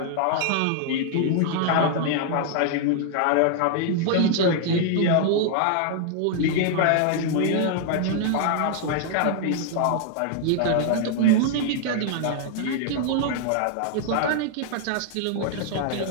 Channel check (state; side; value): different; both; correlation 0.00